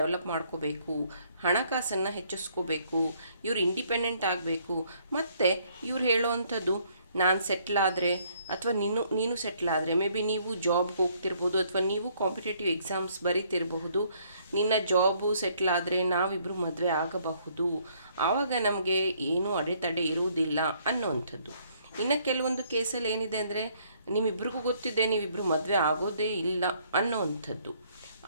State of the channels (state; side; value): inverted; both; correlation -0.65